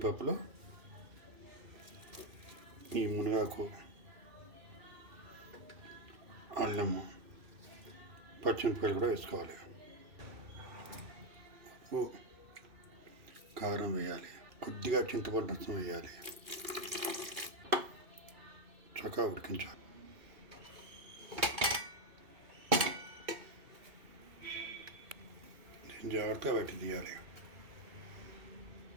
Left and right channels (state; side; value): late; left; 2.6 ms